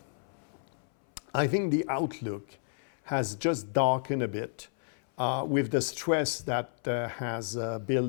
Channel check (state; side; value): silent; right; 57 dB below the other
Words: I think the outlook has just darkened a bit with the stress that has